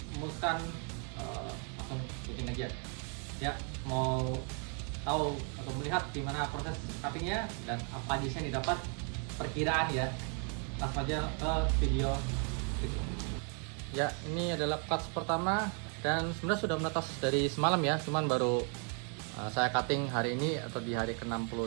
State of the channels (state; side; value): quieter; left; 39.9 dB